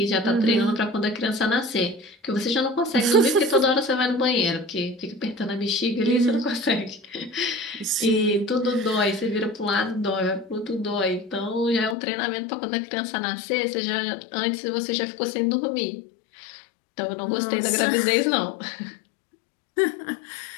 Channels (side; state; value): right; drops out; at 12.0 s